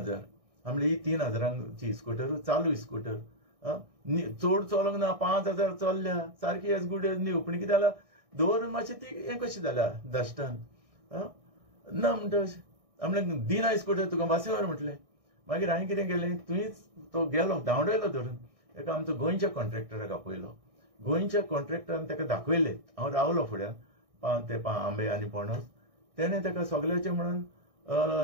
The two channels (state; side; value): late; left; 1.6 ms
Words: म्हणलें ही 3000ची स्कूटर चालू स्कूटर चड चलोंक ना 5000 चल्ल्या सारकी एज गूड एज न्यू पूण कितें जालां दवरून मातशें ती हें कशी जाल्या डस्टान ना म्हणटा अशें म्हणलें दिना स्कूटर तुका बसी व्हर म्हटलें मागीर हांवें कितें केलें तुवेंच तो गेलो धांवडयलो धरून एका आमचो गोंयच्या कॉन्ट्रॅक्टराक आपयलो गोंयच्या कॉन्ट्रॅक्टरान ताका दाखयलें हांव रावलो फुड्यान ते आंबे आनी पणस तेणें ताका सगळ्याचें म्हणून